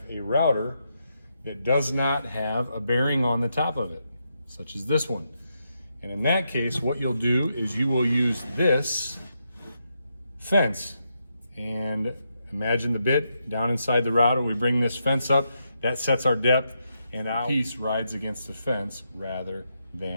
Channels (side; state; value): both; inverted; correlation -0.82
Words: a router that does not have a bearing on the top of it, such as this one. And in that case, what you'll do is you will use this fence. And imagine the bit down inside the router. We bring this fence up, that sets our depth, and our piece rides against the fence rather